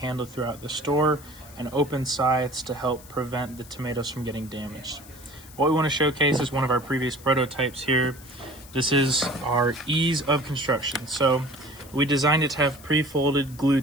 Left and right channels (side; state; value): left; noise; hiss, 20 dB below the sound